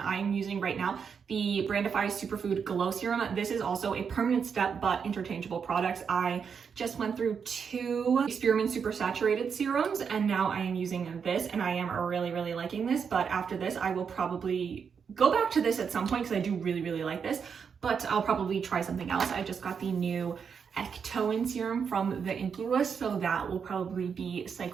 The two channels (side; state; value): left; quieter; 6.5 dB